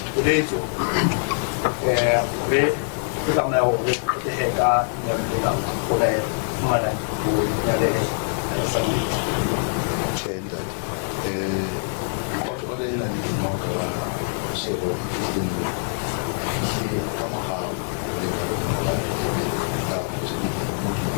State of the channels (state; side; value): silent; right; digital silence